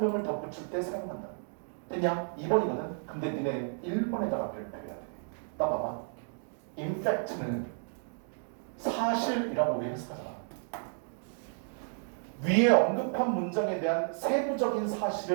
덧붙일 때 사용한다. 그냥 2번이거든. 근데 니네 1번에다가 별표해야 돼. 나 봐봐. 임팩트는 사실이라고 우리 해석하잖아. 위에 언급한 문장에 대한 세부적인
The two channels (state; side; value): silent; left; 56 dB below the other